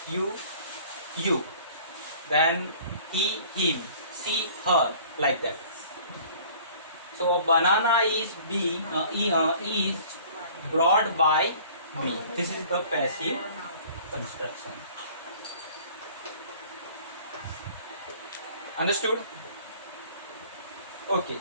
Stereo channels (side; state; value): both; inverted; correlation -0.50